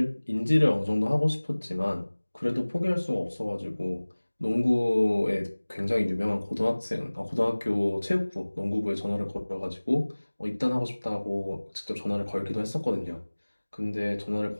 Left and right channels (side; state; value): both; inverted; correlation -1.00